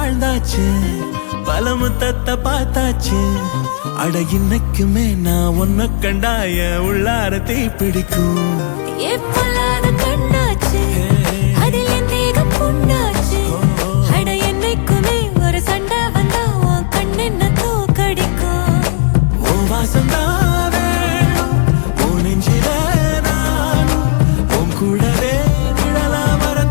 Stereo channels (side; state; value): right; silent; digital silence